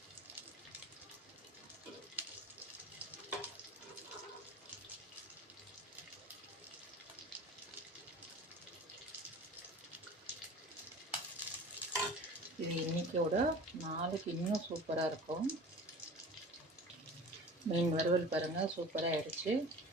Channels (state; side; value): normal; both; correlation 0.40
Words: இது இன்றைக்கோட நாளைக்கு இன்னும் சூப்பராக இருக்கும். மீன் வறுவல் பாருங்கள், சூப்பராக ஆகிடுச்சு.